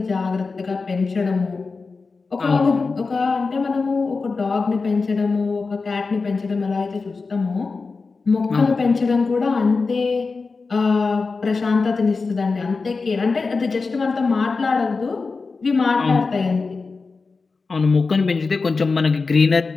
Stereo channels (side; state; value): right; quieter; 4.3 dB